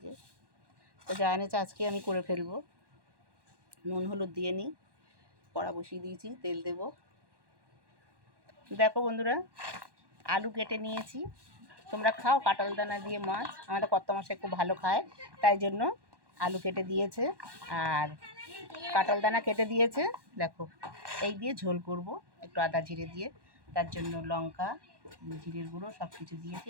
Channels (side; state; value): left; late; 1.1 ms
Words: যে তো যা এনেছে আজকে আমি করে ফেলবো। নুন হলুদ দিয়ে নিই, কড়া বসিয়ে দিয়েছি, তেল দেব। দেখো বন্ধুরা, আলু কেটে নিয়েছি। তোমরা খাও কাঁঠাল দানা দিয়ে মাছ? আমাদের কর্তামশাই খুব ভালো খায়, তাই জন্য আলু কেটে দিয়েছে আর কাঁঠাল দানা কেটে দিয়েছে। দেখো এই দিয়ে ঝোল করব, একটু আদা জিরে দিয়ে। তার জন্য লঙ্কা, জিরের গুঁড়ো সব কিছু দিয়েছি,